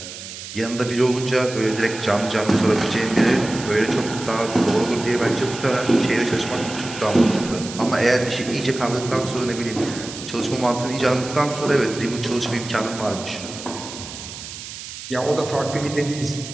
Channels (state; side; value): noise; right; hiss, 11 dB below the sound